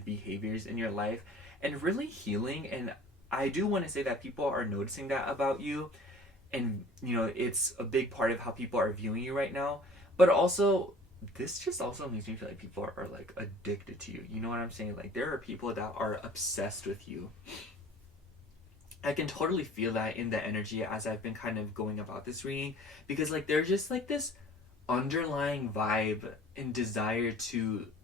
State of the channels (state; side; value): normal; both; correlation 0.48